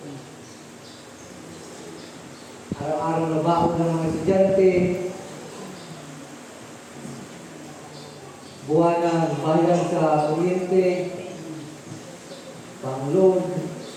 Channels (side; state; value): both; identical; correlation 1.00